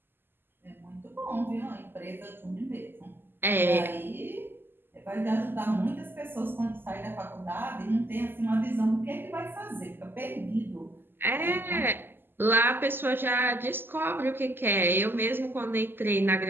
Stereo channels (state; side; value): late; left; 0.098 ms